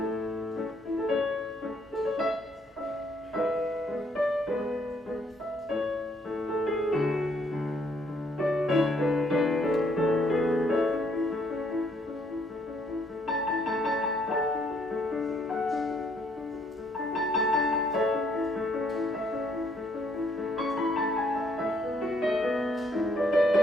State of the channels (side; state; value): both; normal; correlation 0.68